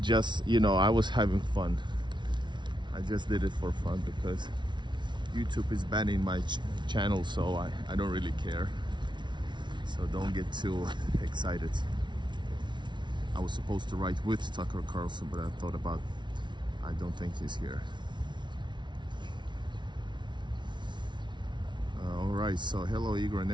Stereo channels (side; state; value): left; late; 0.23 ms